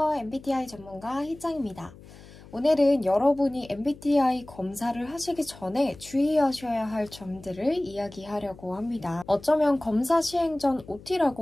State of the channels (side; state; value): left; noise; hum, 20 dB below the sound